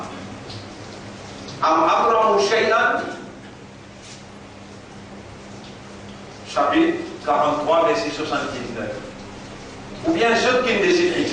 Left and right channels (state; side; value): identical; both; correlation 1.00